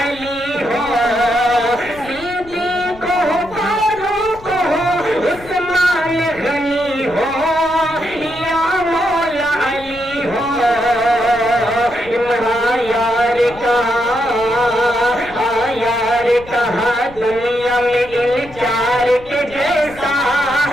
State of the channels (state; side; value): noise; left; rumble, 19 dB below the sound